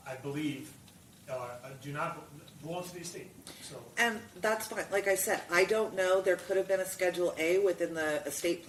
I believe, do not belong to the estate, so. And that's fine. Like I said, I don't know. There could have been a Schedule A within the estate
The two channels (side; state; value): both; identical; correlation 1.00